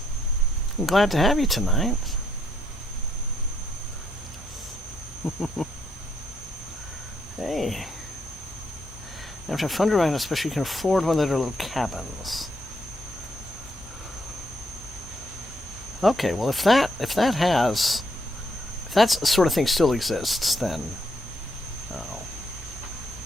glad to have you tonight. Hey. After fun to ride, especially you can afford one of their little cabins. Okay, well if that sort of thing still exists, then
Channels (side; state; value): both; normal; correlation 0.74